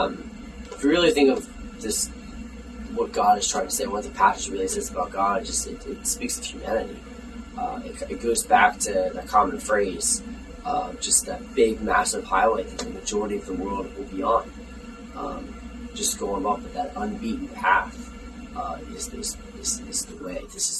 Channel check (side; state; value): both; identical; correlation 1.00